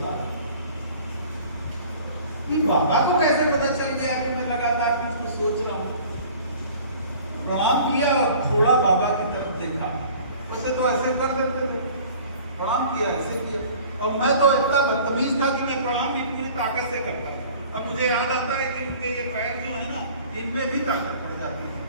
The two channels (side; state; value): both; inverted; correlation -0.48